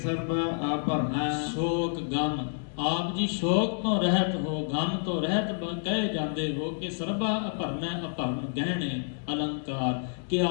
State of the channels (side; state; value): right; silent; digital silence